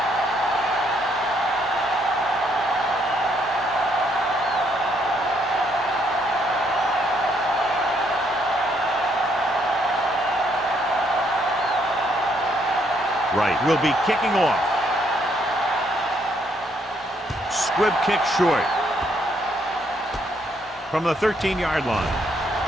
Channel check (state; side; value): normal; both; correlation 0.71